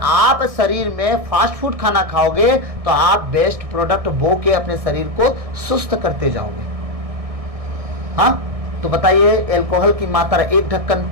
शरीर में फास्ट फूड खाना खाओगे तो आप बेस्ट प्रोडक्ट बो के अपने शरीर को सुस्त करते जाओगे। हाँ, तो बताइए, अल्कोहल की मात्रा 1 ढक्कन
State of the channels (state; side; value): late; left; 1.6 ms